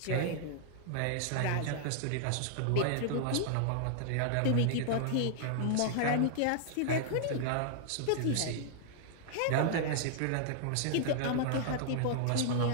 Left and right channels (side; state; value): both; different; correlation -0.01